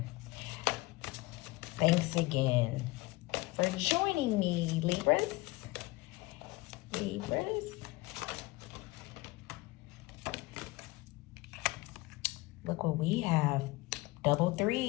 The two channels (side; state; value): right; quieter; 21.5 dB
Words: Thanks again for joining me, Libras. Look what we have. Double